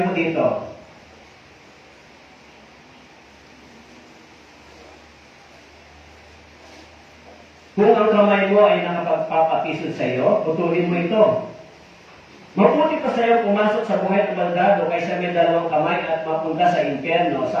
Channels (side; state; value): both; identical; correlation 1.00